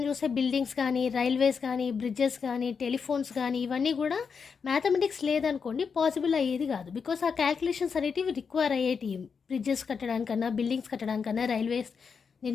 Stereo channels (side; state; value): right; quieter; 5.9 dB